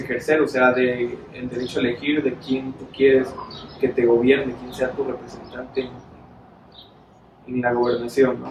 o sea, el derecho a elegir de quién tú quieres que te gobierne, quién sea tu representante en la gobernación,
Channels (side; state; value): both; identical; correlation 1.00